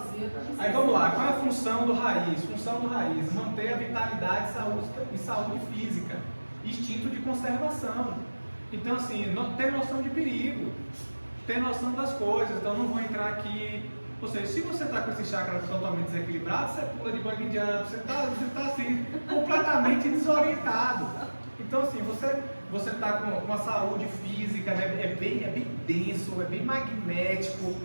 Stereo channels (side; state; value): both; inverted; correlation -1.00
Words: Aí vamos lá, qual é a função do raiz? Função do raiz, manter a vitalidade e saúde física, instinto de conservação. Então assim, ter noção de perigo, ter noção das coisas, então não vou entrar aqui. Ou seja, se você está com esse chakra totalmente desequilibrado, você pula de bug jump, você está assim, completamente desorientado. Então assim, você está com a saúde física, né? é bem denso, é bem magnético.